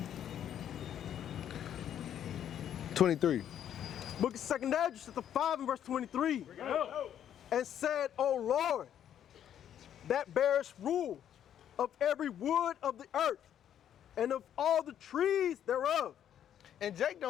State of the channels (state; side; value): quieter; right; 10.0 dB